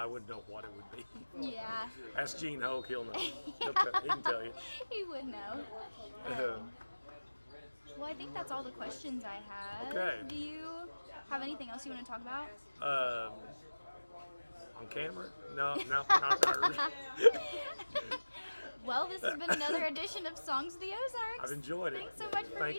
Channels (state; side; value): inverted; both; correlation -1.00